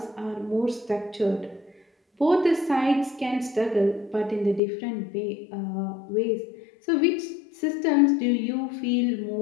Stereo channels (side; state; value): right; drops out; at 4.6 s